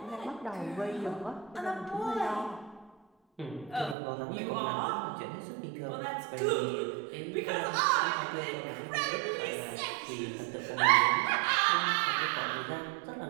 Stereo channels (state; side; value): drops out; left; at 4.0 s